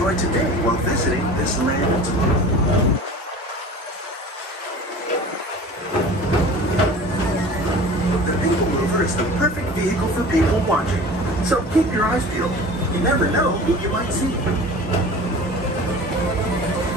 today while visiting this land tomorrow. The PeopleMover is the perfect vehicle for people watching, so keep your eyes peeled. You never know who you might see.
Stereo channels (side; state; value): both; normal; correlation 0.40